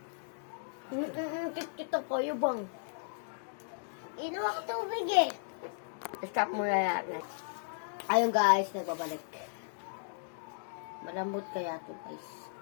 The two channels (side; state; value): right; silent; digital silence